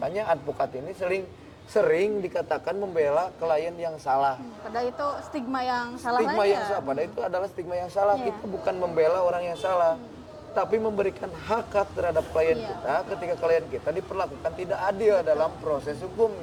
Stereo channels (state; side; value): identical; both; correlation 1.00